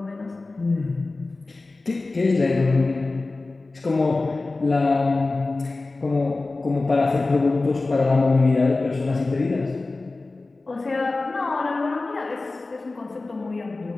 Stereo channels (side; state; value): right; quieter; 3.3 dB